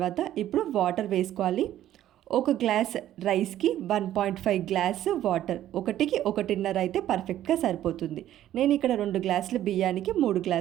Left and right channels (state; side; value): quieter; left; 12.5 dB